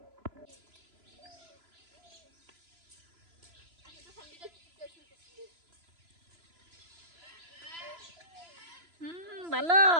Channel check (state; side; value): late; left; 3.0 ms